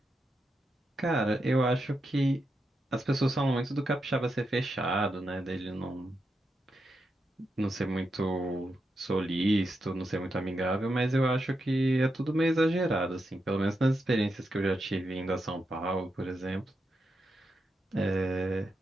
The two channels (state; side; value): normal; both; correlation 0.86